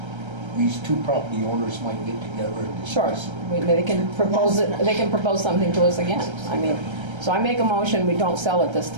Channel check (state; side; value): late; left; 1.3 ms